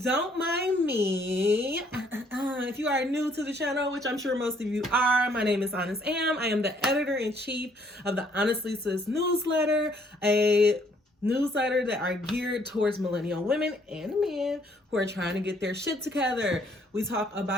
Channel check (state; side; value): normal; both; correlation 0.65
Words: mind me. If you are new to the channel, which I'm sure most of you are, my name is Honest Am. I am the editor-in-chief of the Honestly Sis newsletter, a newsletter that are geared towards millennial women and men who are trying to get their shit together. We